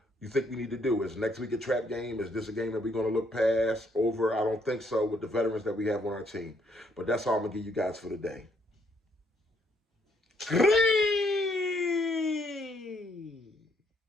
you think we need to do. Is next week a trap game? Is this a game that we're going to look past, over? I don't think so with the veterans that we have on our team. But that's all I'm going to give you guys for today.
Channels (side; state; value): both; normal; correlation 0.71